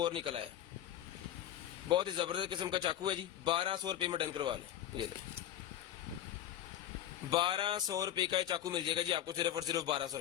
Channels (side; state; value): right; quieter; 11.7 dB